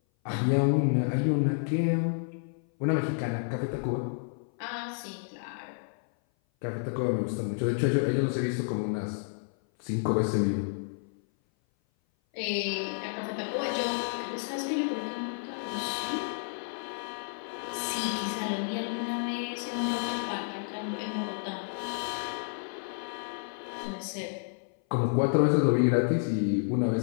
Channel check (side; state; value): right; silent; 56 dB below the other